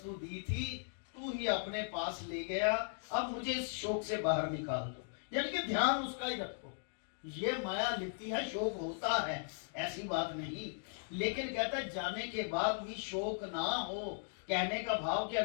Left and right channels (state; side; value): silent; right; digital silence